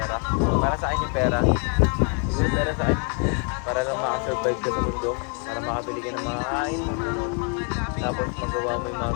Para sa akin yung pera. Siguro pera sa akin. Para lang makasurvive ka sa mundo. Para makabili ka ng mga kain. Tapos magawa mo yung mga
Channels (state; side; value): quieter; right; 39.9 dB